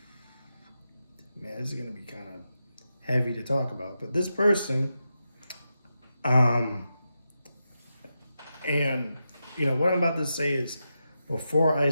man, this is gonna be kind of heavy to talk about, but this person, um, and what I'm about to say is, before I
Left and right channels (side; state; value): both; inverted; correlation -0.88